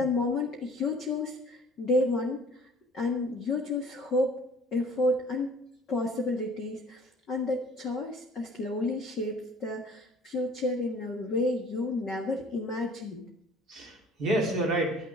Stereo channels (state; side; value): normal; both; correlation 0.50